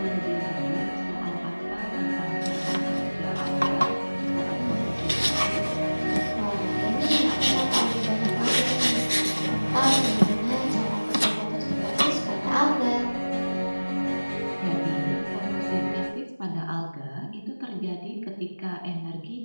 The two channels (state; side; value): inverted; both; correlation -1.00